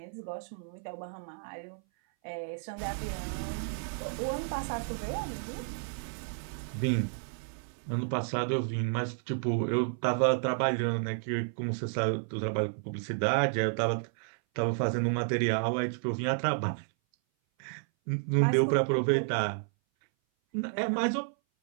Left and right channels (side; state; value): left; silent; 57 dB below the other